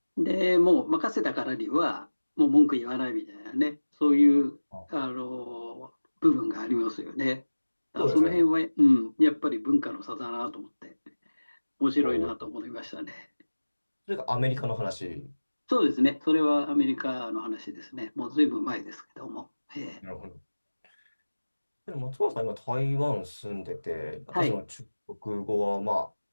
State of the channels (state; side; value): inverted; both; correlation -1.00